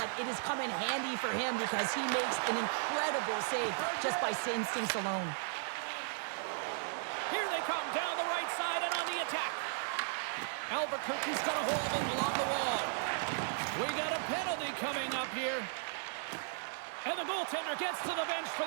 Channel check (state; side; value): silent; left; 54 dB below the other